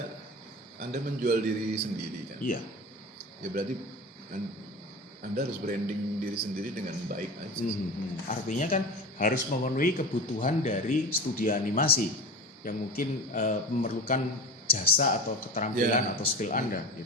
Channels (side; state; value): both; normal; correlation 0.30